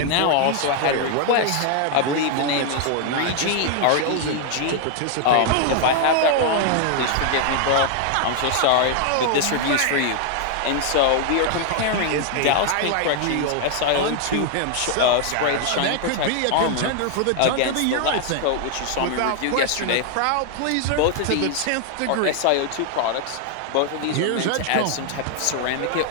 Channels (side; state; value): both; different; correlation 0.00